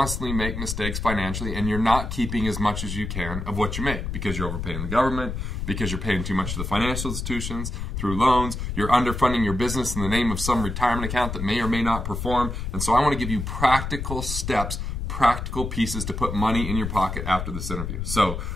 make mistakes financially and you're not keeping as much as you can of what you make because you're overpaying the government, because you're paying too much to the financial institutions through loans, you're underfunding your business in the name of some retirement account that may or may not perform. And so I want to give you practical steps, practical pieces to put money in your pocket after this interview. So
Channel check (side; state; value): left; noise; rumble, 4 dB below the sound